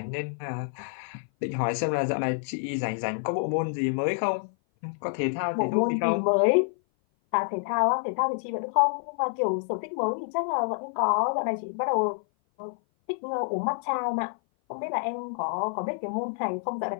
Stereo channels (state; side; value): silent; right; 56 dB below the other